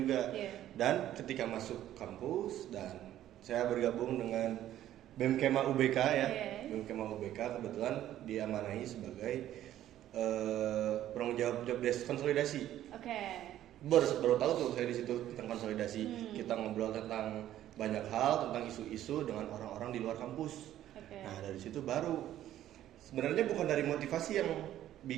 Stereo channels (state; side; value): quieter; left; 12.5 dB